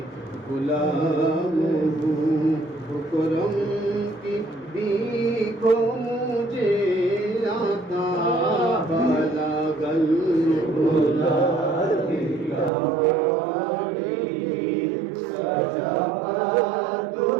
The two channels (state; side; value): drops out; left; at 12.7 s